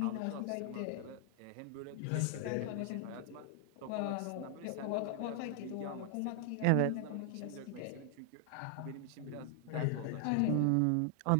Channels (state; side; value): different; both; correlation 0.00